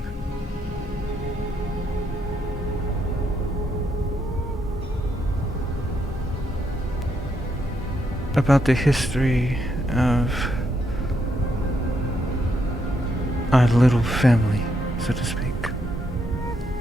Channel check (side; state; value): both; normal; correlation 0.77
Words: About the history of our little family, so to speak.